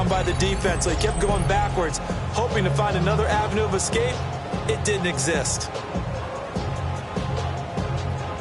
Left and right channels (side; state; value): both; identical; correlation 1.00